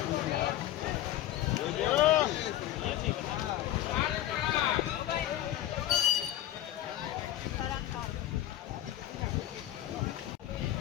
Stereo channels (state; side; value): quieter; right; 13.4 dB